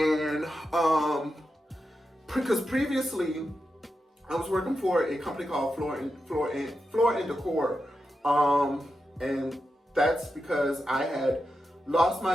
because previously I was working for a company called Floor and Decor, and that's because I had lost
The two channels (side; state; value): both; normal; correlation 0.88